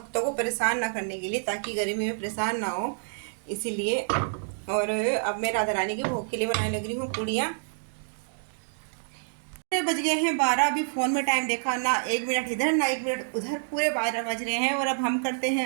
को परेशान ना करने के लिए, ताकि गर्मी में परेशान ना हो, इसीलिए। और अब मैं राधा रानी के भोग के लिए बनाने लग रही हूँ पूड़ियाँ। बज गए हैं 12। अभी फ़ोन में टाइम देखा ना, 1 मिनट इधर ना 1 मिनट उधर, पूरे 12 बज रहे हैं। और अब हम करते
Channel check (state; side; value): silent; left; digital silence